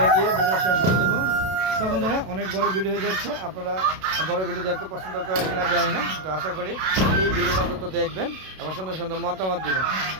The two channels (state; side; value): late; left; 32 ms